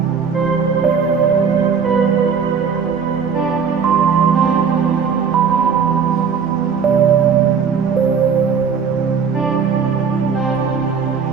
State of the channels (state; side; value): quieter; left; 6.4 dB